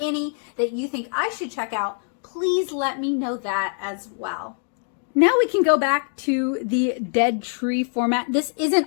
that you think I should check out, please let me know that as well. Now we can go back to the dead tree format. This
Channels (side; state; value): right; silent; 56 dB below the other